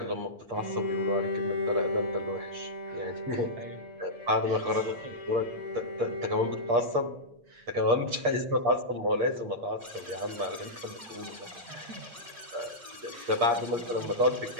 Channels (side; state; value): left; late; 8.5 ms